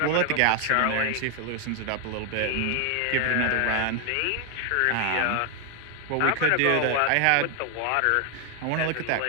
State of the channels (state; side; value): different; both; correlation 0.00